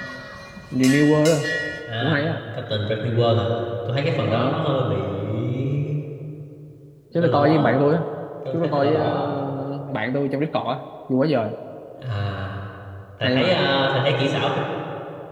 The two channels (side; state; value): both; identical; correlation 1.00